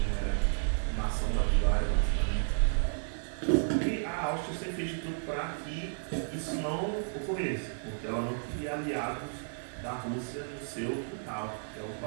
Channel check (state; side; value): silent; left; digital silence